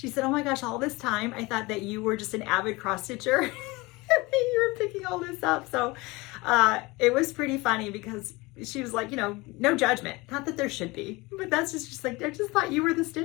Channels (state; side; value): quieter; right; 23.2 dB